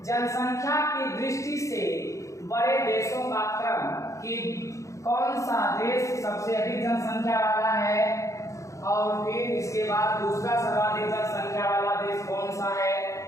जनसंख्या की दृष्टि से बड़े देशों का क्रम कि कौन सा देश सबसे अधिक जनसंख्या वाला है और फिर इसके बाद दूसरा सर्वाधिक जनसंख्या वाला देश कौन सा है,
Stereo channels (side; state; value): right; late; 0.15 ms